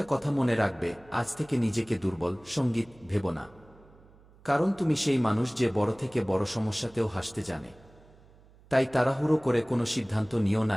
কথা মনে রাখবে, আজ থেকে নিজেকে দুর্বল সঙ্গীত ভেবো না। কারণ তুমি সেই মানুষ যে বড় থেকে বড় সমস্যাতেও হাসতে জানে। তাই তাড়াহুড়ো করে কোনো সিদ্ধান্ত নিও না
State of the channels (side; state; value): right; noise; hum, 26 dB below the sound